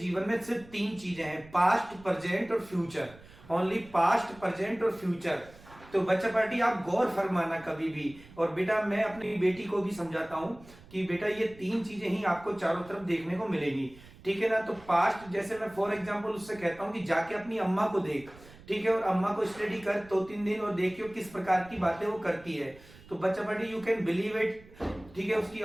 में सिर्फ तीन चीजें हैं, पास्ट, प्रेजेंट और फ्यूचर। ओनली पास्ट, प्रेजेंट और फ्यूचर। तो बच्चा पार्टी आप गौर फरमाना कभी भी। और बेटा मैं अपनी बेटी को भी समझाता हूं कि बेटा ये तीन चीजें ही आपको चारों तरफ देखने को मिलेगी, ठीक है ना। तो पास्ट, जैसे मैं फॉर एग्जांपल उससे कहता हूं कि जाके अपनी अम्मा को देख, ठीक है, और अम्मा को स्टडी कर 2-3 दिन और देखियो किस प्रकार की बातें वो करती है। तो बच्चा party you can believe it, ठीक है। उसकी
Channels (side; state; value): right; noise; rumble, 22 dB below the sound